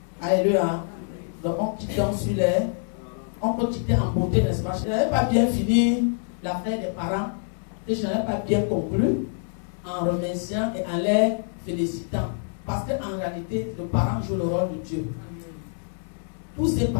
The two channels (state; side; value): silent; right; 61 dB below the other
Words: Alléluia. Donc on quitte sur les. On peut quitter en beauté, n'est-ce pas? Je n'avais pas bien fini l'affaire des parents. Et je n'avais pas bien conclu en remerciant et en les félicitant. Parce qu'en réalité, le parent joue le rôle de Dieu. Tous ces